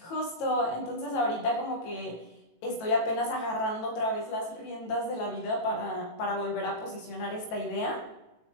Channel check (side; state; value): right; late; 18 ms